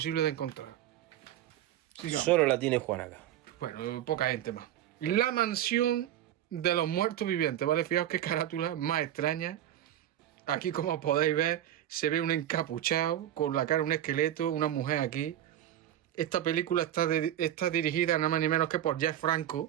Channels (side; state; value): left; quieter; 12.0 dB